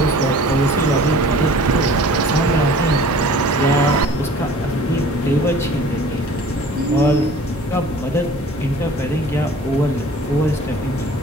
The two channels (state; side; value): normal; both; correlation 0.47